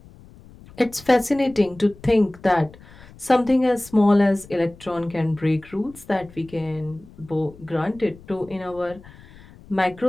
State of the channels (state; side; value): noise; left; rumble, 22 dB below the sound